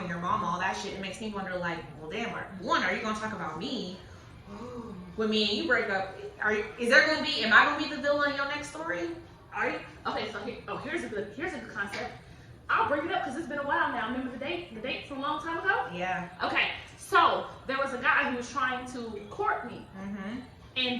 your mama, all that shit, it makes me wonder, well, damn, one, are you gonna talk about me? When me and you break up, am I gonna be the villain in your next story? Are you? Okay, so here's a good concept. I'll bring it up because it's been a while now. Remember the date from a long time ago? Yeah. Okay, so there was a guy who was trying to court me. Mm-hmm. And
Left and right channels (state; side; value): identical; both; correlation 1.00